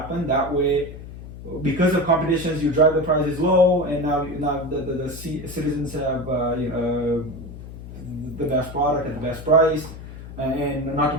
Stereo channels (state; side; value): noise; left; hum, 13 dB below the sound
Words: That way, because of competitions, you drive the prices low, and now the citizens have the best product at the best price, and not to